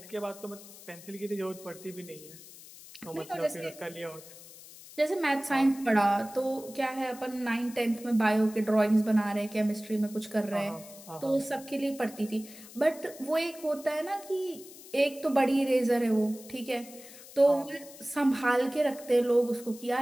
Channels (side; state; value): left; noise; hiss, 18 dB below the sound